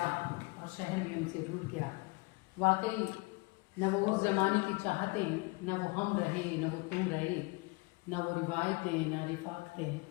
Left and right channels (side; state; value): right; quieter; 26.5 dB